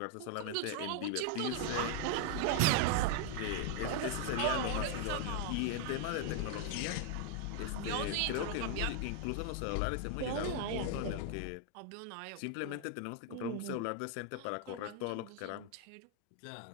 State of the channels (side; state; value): both; different; correlation 0.00